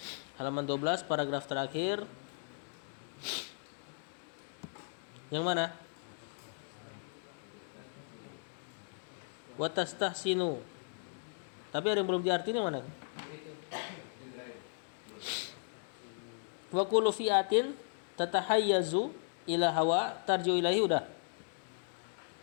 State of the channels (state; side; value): silent; right; digital silence